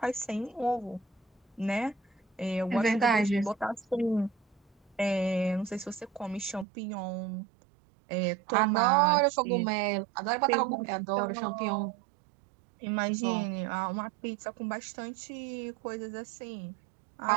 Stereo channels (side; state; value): left; drops out; at 6.7 s